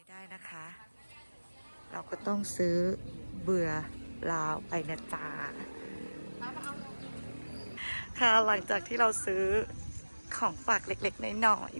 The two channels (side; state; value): both; inverted; correlation -1.00